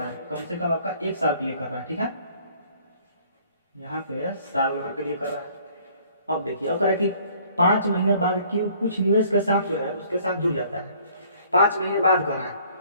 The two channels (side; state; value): both; inverted; correlation -0.58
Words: है, कम से कम आपका 1 साल के लिए कर रहा है, ठीक है, यहाँ पे साल भर के लिए कर रहा है। अब देखिए अब करें कि 5 महीने बाद क्यू कुछ निवेश के साथ जो है उसके साथ जुड़ जाता है, 5 महीने बाद कर रहा